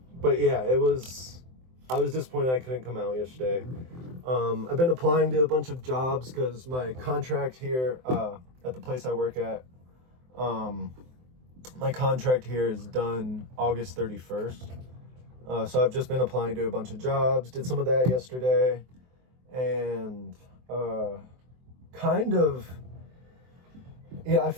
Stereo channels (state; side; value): late; left; 23 ms